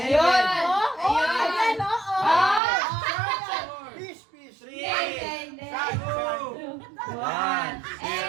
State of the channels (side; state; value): left; drops out; at 2.6 s